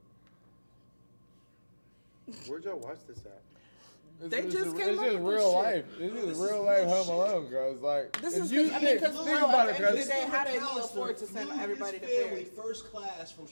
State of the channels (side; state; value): both; inverted; correlation -1.00